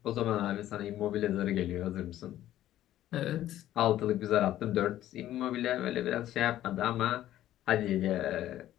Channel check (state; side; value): quieter; right; 13.1 dB